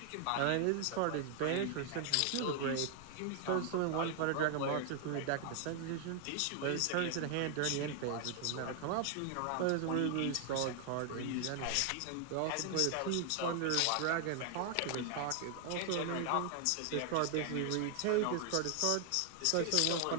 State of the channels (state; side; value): different; both; correlation 0.00